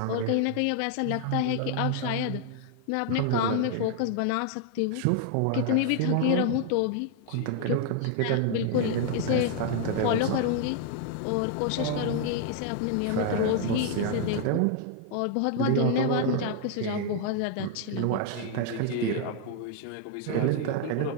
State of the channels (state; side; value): different; both; correlation 0.00